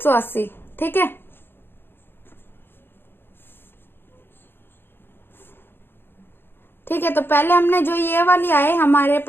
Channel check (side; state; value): right; late; 0.10 ms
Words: ठीक है, ठीक है, तो पहले हमने जो ये वाली आए हमारे